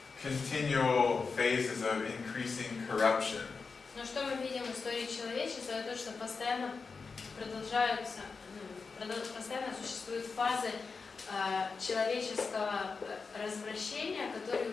continual phases of increasing corruption. Но что мы видим в истории человечества, это то, что постоянно постоянно существуют фазы человеческого развращения, которые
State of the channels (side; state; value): right; quieter; 4.7 dB